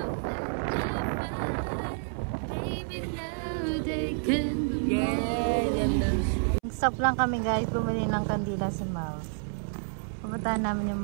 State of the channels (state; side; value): silent; left; 58 dB below the other